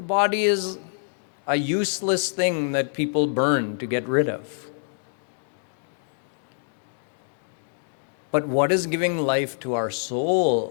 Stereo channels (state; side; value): silent; right; digital silence